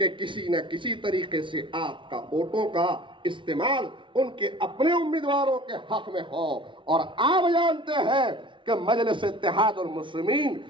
किसी न किसी तरीके से आपका वोटों का इस्तेमाल उनके अपने उम्मीदवारों के हक में हो। और आप जानते हैं कि मजलिस इत्तेहादुल मुस्लिमीन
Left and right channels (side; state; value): left; late; 0.24 ms